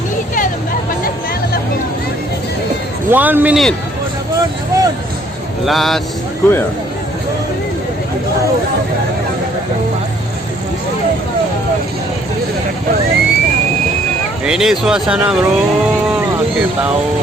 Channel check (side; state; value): both; normal; correlation 0.63